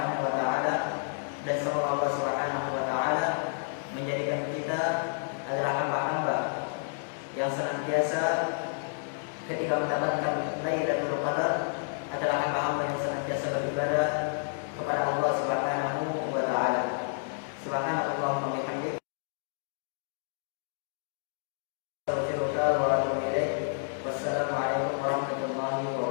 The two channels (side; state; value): right; silent; digital silence